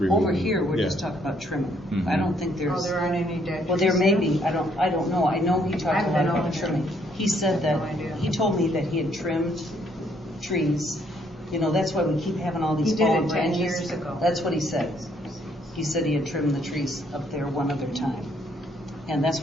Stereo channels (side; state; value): both; normal; correlation 0.68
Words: Over here, we're Yeah. just talking about trimming. Mhm. I don't think Oh, there's. there aren't any dead trees? Well, there may be, I don't know. I know he talked I've a lot been about over trimming. there. He said that, No idea. he told me that he had trimmed trees. You know, that's why we keep having all these He did it fallen 10 branches. years ago. That's what he said. He said he had trimmed the trees up there one other time. And that's